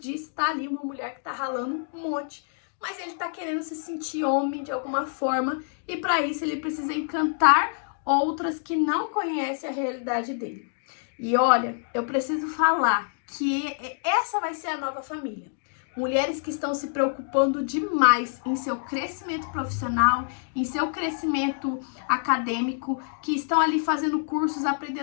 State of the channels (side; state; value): right; silent; digital silence